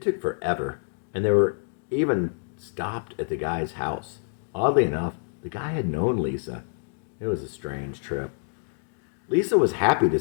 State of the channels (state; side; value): silent; right; digital silence